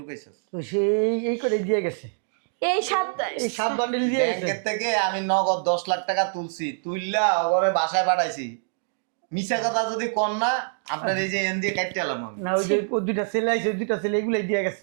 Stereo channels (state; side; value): silent; left; digital silence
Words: তো সেই এই করে দিয়ে গেছে, এই সাত এই 7 বান্ডিল দিয়ে গেছে। ব্যাংকের থেকে আমি নগদ 10 লাখ টাকা তুলছি, তুইলা ওরে বাসায় পাঠাইছি। মিছা কথা যদি কর না, আপনার এই যে এন দিয়ে কাটতে এলাম আমি। না, ওই যে ওই দুইটা ছেলে আইছে, ওই দুইটা ছেলে এগুলাই দিয়ে